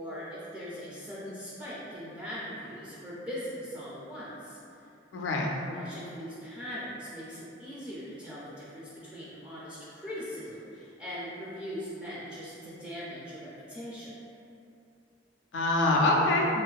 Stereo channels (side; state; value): both; normal; correlation 0.18